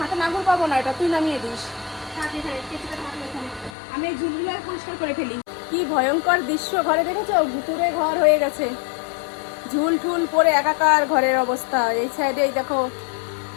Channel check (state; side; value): drops out; right; at 3.7 s